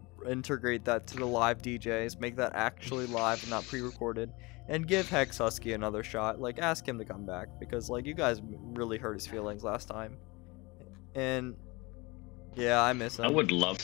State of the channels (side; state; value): right; quieter; 24.7 dB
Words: integrate that to the live DJs, make that actually live and not pre-recorded, and give Hex Husky another shot. Like, ask him to come back because, like, you guys really hurt his feelings last time. And yeah, I miss him. I would love